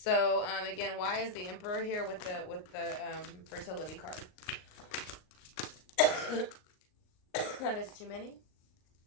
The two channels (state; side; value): late; right; 38 ms